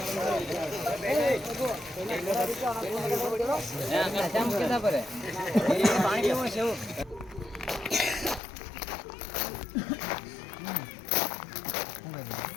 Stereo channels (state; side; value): drops out; right; at 8.4 s